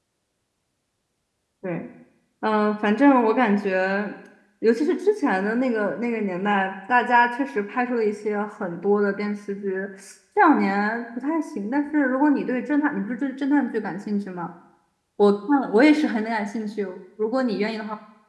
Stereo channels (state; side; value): identical; both; correlation 1.00